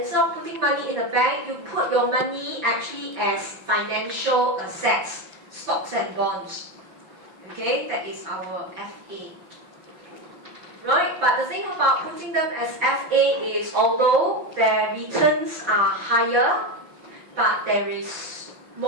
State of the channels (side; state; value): left; late; 5.8 ms